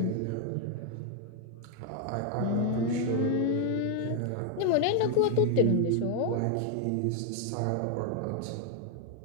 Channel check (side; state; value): both; different; correlation 0.00